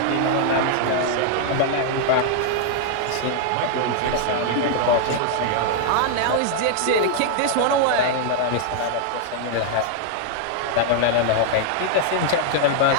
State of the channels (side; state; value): both; different; correlation 0.00